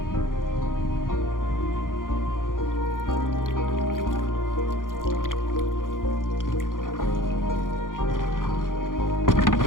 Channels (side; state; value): right; late; 0.90 ms